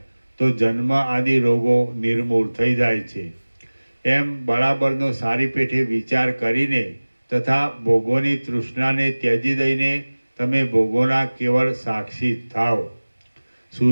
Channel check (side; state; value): both; inverted; correlation -1.00